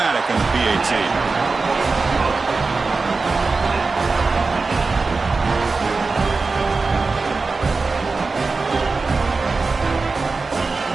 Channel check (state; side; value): quieter; left; 4.1 dB